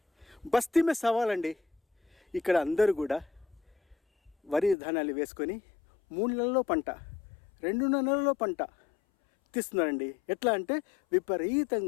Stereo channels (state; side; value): drops out; right; at 4.8 s